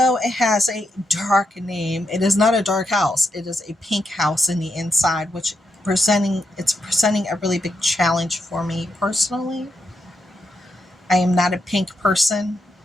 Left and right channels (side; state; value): both; normal; correlation 0.82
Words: it has a dark name, it is not a dark house. It is a pink house in the inside, which presenting a really big challenge for me personally. I am not a pink person.